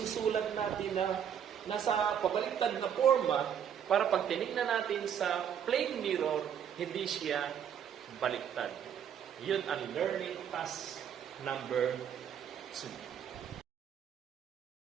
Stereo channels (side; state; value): left; quieter; 8.6 dB